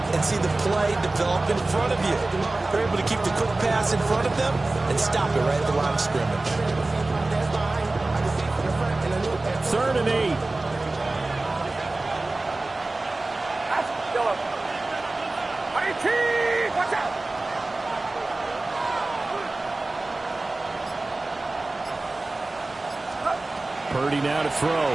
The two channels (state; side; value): quieter; left; 3.0 dB